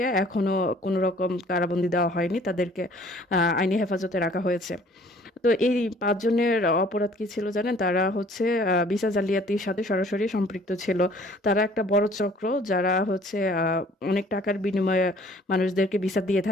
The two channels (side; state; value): both; normal; correlation 0.55